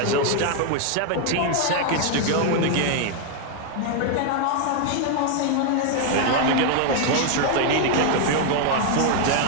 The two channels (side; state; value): both; different; correlation 0.00